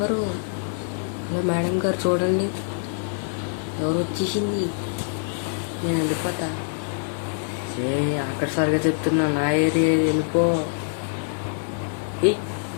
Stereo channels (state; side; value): silent; right; digital silence